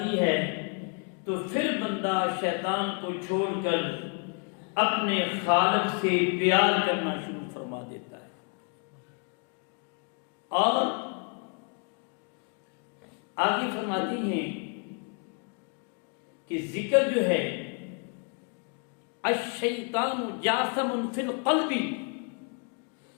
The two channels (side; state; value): right; quieter; 37.3 dB